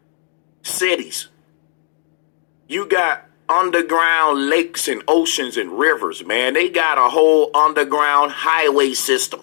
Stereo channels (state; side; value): silent; right; digital silence